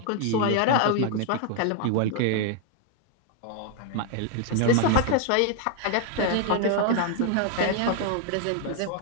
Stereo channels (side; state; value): both; different; correlation 0.00